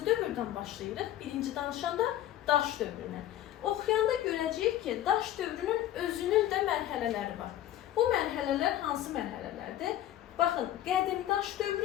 dövrdən başlayırıq? Birinci danışanda daş dövrünə. Oxuyanda görəcəyik ki, daş dövrünün özünün də mərhələləri var. Bu mərhələlər hansı mərhələlərdir? Baxın, qədim daş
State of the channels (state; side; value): quieter; right; 12.8 dB